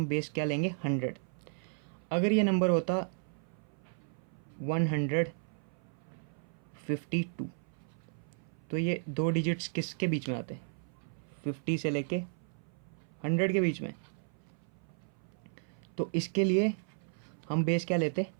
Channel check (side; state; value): left; silent; 55 dB below the other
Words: बेस क्या लेंगे? 100। अगर ये नंबर होता 152 तो ये 2 डिजिट्स किसके बीच में आते हैं? 50 से लेके 100 के बीच में। तो इसके लिए हम बेस क्या लेते?